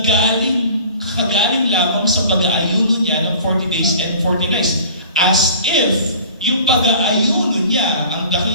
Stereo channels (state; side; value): inverted; both; correlation -0.45